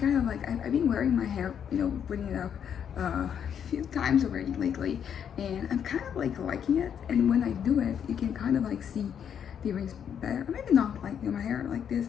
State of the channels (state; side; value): quieter; right; 8.3 dB